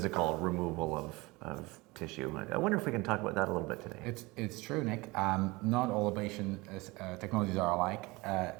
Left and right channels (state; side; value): quieter; left; 23.2 dB